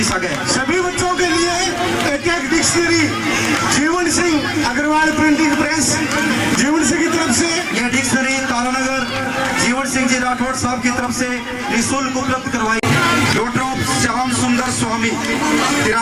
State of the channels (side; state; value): both; identical; correlation 1.00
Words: सा गया। सभी बच्चों के लिए एक dictionary Jeevan Singh Agarwal printing press Jeevan Singh की तरफ से यह डिक्शनरी तारानगर जीवन सिंह जी राठौड़ साहब की तरफ से निःशुल्क उपलब्ध करवाई। डॉक्टर ऑफ श्याम सुंदर स्वामी